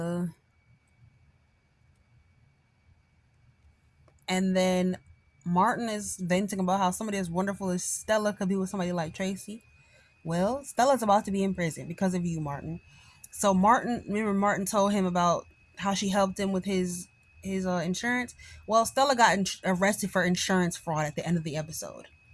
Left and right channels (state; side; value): identical; both; correlation 1.00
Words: and then Martin is venting about how somebody as wonderful as Stella could be with somebody like Tracy. Well, Stella's about to be in prison because of you, Martin. So remember Martin told him about how she helped him with his insurance. Well, Stella got arrested for insurance fraud at the end of the episode.